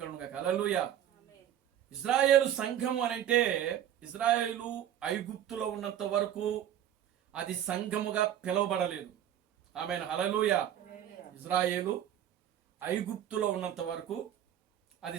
కలుగును గాక. హల్లెలూయా. ఇశ్రాయేలు సంఘము అని అంటే, ఇశ్రాయేలు ఐగుప్తులో ఉన్నంత వరకు అది సంఘముగా పిలువబడలేదు. ఆమేన్. హల్లెలూయా. ఇశ్రాయేలు ఐగుప్తులో ఉన్నంత వరకు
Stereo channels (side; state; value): left; quieter; 10.7 dB